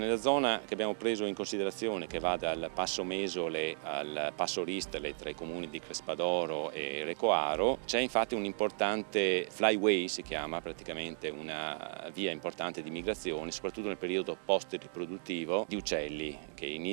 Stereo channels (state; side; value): silent; left; digital silence